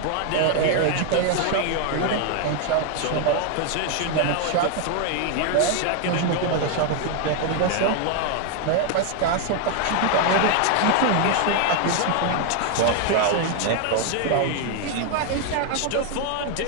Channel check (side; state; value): both; different; correlation 0.00